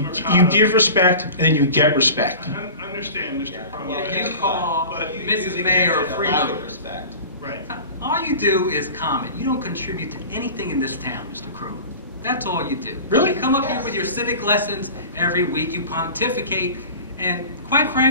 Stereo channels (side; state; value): both; inverted; correlation -0.37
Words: Mercado, give respect, and then you get respect. I understand, Mr. Cromwell. You call but Mrs. Mayor a freeloader. Respect. Right. All you do is comment. You don't contribute to anything in this town, Mr. Crowley. That's all you do. Really? You come up here with your civic lessons every week. You pontificate. And quite